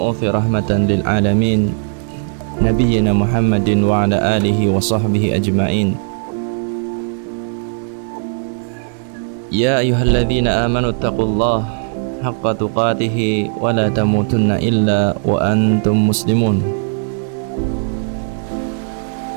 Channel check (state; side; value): silent; left; digital silence